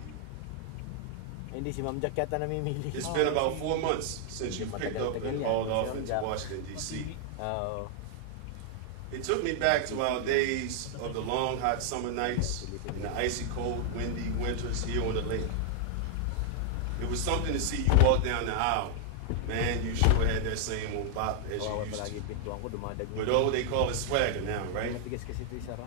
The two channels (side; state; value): both; different; correlation 0.00